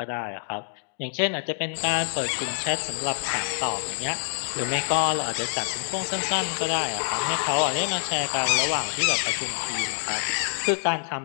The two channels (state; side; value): silent; right; digital silence